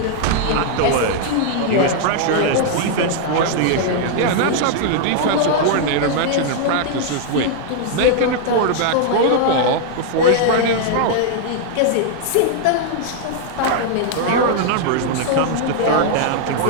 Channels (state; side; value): different; both; correlation 0.00